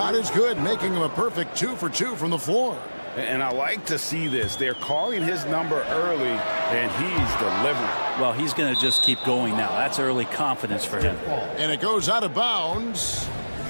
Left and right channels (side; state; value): both; inverted; correlation -1.00